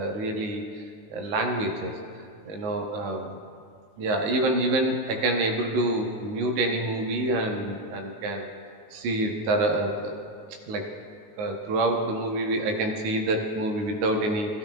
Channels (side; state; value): left; late; 19 ms